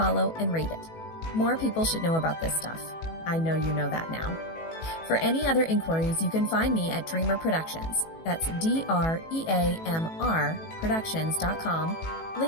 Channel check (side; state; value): right; late; 18 ms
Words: and rate it. More people should know about this stuff. I know you know that now. For any other inquiries, you can find me at Dreamr Productions. That's DREAMR Productions.com,